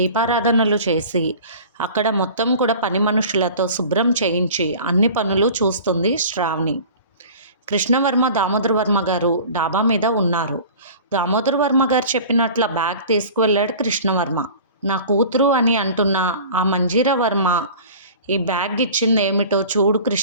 చేసి అక్కడ మొత్తం కూడా పని మనుషులతో శుభ్రం చేయించి అన్ని పనులు చూస్తుంది శ్రావణి. కృష్ణవర్మ దామోదర్ వర్మ గారు డాబా మీద ఉన్నారు. దామోదర్ వర్మ గారు చెప్పినట్ల బ్యాగ్ తీసుకువెళ్ళాడు కృష్ణవర్మ. నా కూతురు అని అంటున్న ఆ మంజీరా వర్మ ఈ బ్యాగ్ ఇచ్చింది ఏమిటో చూడు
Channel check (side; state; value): both; inverted; correlation -0.41